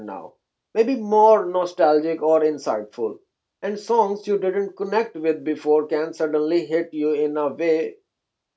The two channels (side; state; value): both; identical; correlation 1.00